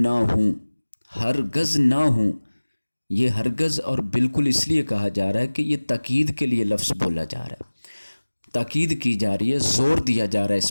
ہوں، ہرگز نہ ہوں۔ یہ ہرگز اور بالکل اس لیے کہا جا رہا ہے کہ یہ تاکید کے لیے لفظ بولا جا رہا ہے، تاکید کی جا رہی ہے، زور دیا جا رہا ہے اس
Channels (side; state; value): both; inverted; correlation -1.00